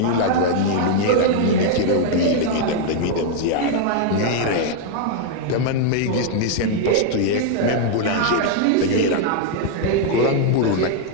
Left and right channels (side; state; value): both; different; correlation 0.00